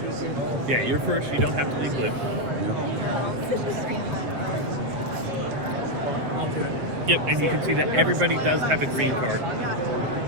Yeah, you're first. You don't have to leave blue. Yep, and you can see that everybody does have a green card,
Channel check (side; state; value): left; late; 7.5 ms